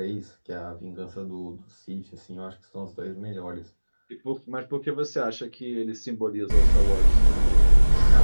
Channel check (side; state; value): both; inverted; correlation -1.00